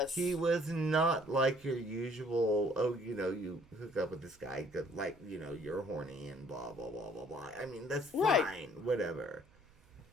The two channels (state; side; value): noise; right; hum, 29 dB below the sound